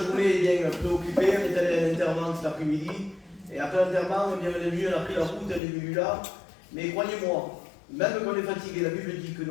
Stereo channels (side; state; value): right; drops out; at 5.6 s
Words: bien préoccupés, on est allé à l'enterrement cet après-midi. Et après l'enterrement, on est venu, on a pris la route, on est venu là. Mais croyez-moi, même quand on est fatigué, la Bible dit que